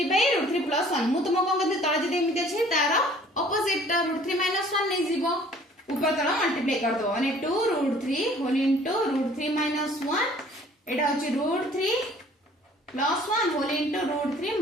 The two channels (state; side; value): normal; both; correlation 0.54